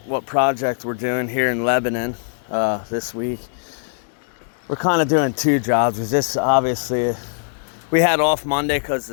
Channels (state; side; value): silent; right; digital silence